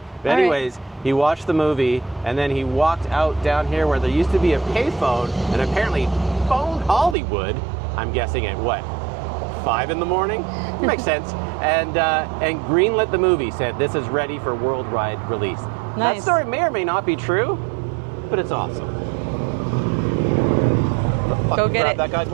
But All right. anyways, he watched the movie, and then he walked out down here where there used to be a payphone, and apparently phoned Hollywood, I'm guessing at what, 5 in the morning? Makes sense. And greenlit the movie, said this is ready for worldwide release. Nice. That story may or may not be true, but it's awesome. Go get Grab it. that guy's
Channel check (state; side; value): drops out; left; at 7.2 s